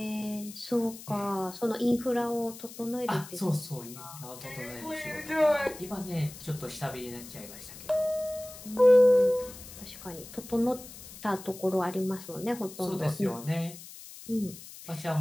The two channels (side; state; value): left; noise; hiss, 15 dB below the sound